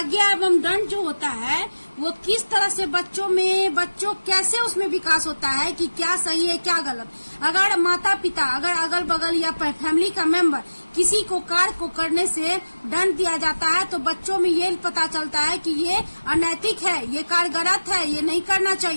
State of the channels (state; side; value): inverted; both; correlation -1.00